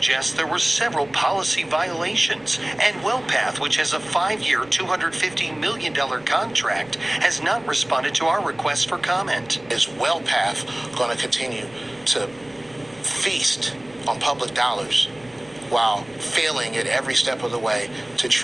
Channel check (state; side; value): noise; right; rumble, 27 dB below the sound